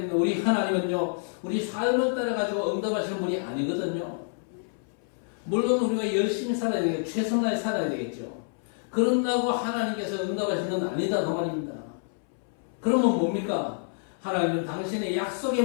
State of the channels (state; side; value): silent; right; 60 dB below the other